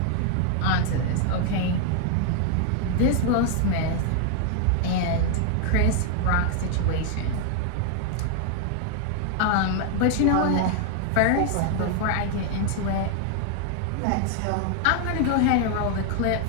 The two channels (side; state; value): both; different; correlation 0.00